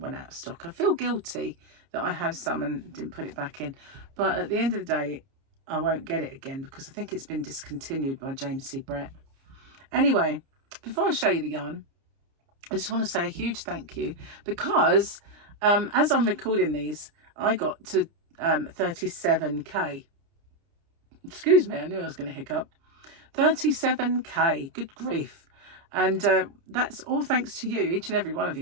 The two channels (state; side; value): late; left; 30 ms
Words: out of stock. I feel guilty that I have some and didn't put it back in, but at the end of the day I won't get it again because I think it's been discontinued by James C. Brett. Anyway, before I show you the yarn, I just want to say a huge thank you because as I'm recording these I got to 37k. Excuse me, I knew I was going to hiccup. 37k, good grief. And that's all thanks to you, each and every one of